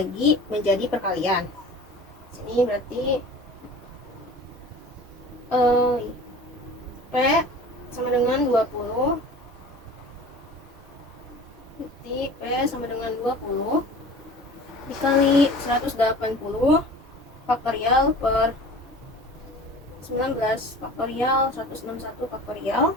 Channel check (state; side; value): normal; both; correlation 0.41